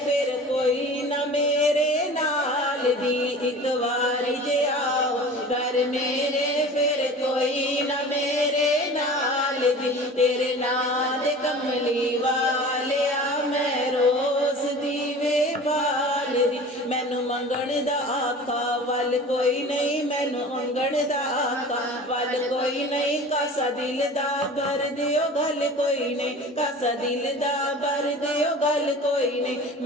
फिर कोई ना मेरे नाल दी। एक वारी जे आओ घर मेरे, फिर कोई ना मेरे नाल दी। तेरे नां दे कमली वालिया मैं रोस दीवे बाल दी। मैनू मंगण दा आका वल कोई नहीं, मैनू मंगण दा आका वल कोई नहीं। कासा दिल दा भर दियो गल कोई नहीं, कासा दिल दा भर दियो गल कोई नहीं।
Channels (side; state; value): both; normal; correlation 0.39